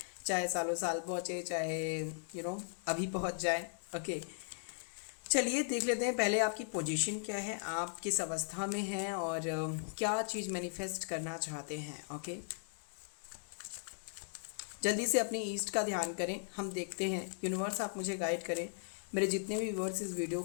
चाहे सालों साल पहुँचे, चाहे अभी पहुँच जाए। ओके, चलिए देख लेते हैं पहले आपकी पोजीशन क्या है, आप किस अवस्था में हैं और क्या चीज़ मैनिफेस्ट करना चाहते हैं। ओके, जल्दी से अपनी ईस्ट का ध्यान करें। हम देखते हैं, यूनिवर्स आप मुझे गाइड करें, मेरे जितने भी व्यूअर्स इस वीडियो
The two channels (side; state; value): right; silent; digital silence